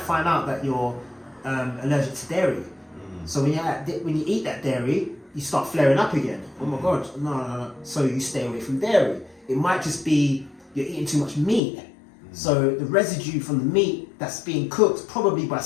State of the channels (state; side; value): drops out; right; at 11.6 s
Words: out that you're allergic to dairy. So when you eat that dairy, you start flaring up again. Oh my God, no. So you stay away from dairy. It might just be you're eating too much meat. So the residue from the meat that's being cooked probably by